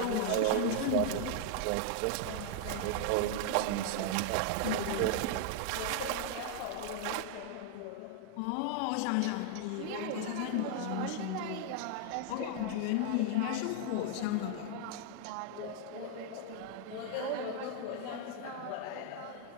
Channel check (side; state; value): both; different; correlation 0.00